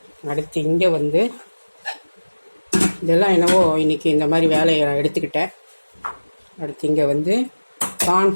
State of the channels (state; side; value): inverted; both; correlation -1.00